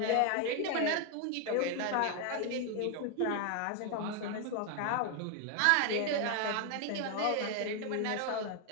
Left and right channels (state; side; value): different; both; correlation 0.01